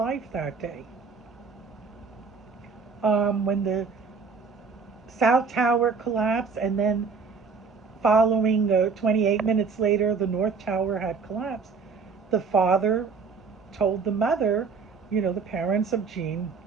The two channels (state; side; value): quieter; left; 5.2 dB